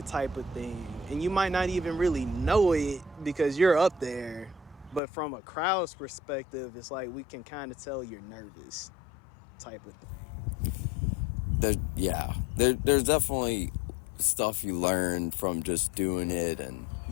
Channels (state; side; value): drops out; right; at 5.0 s